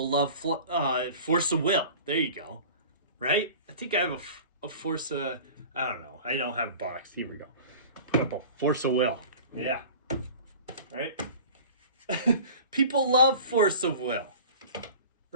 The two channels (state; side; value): inverted; both; correlation -0.41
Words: love force of will. There you go. Right? I think I have a force of... I don't know. I don't have a box. Here we go. Put up a force of will. Yeah. Right? People love force of will.